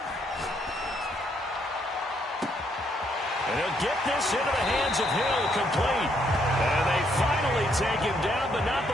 And he'll get this into the hands of Hill, complete. And they finally take him down, but not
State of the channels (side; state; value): both; normal; correlation 0.72